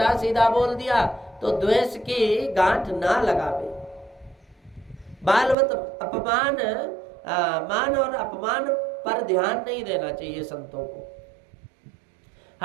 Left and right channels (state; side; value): drops out; left; at 5.6 s